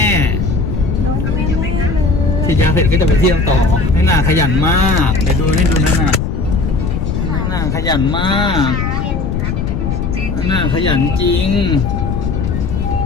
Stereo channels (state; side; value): noise; left; rumble, 2 dB below the sound